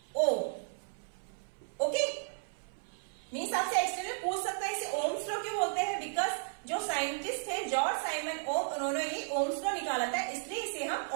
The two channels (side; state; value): left; silent; 55 dB below the other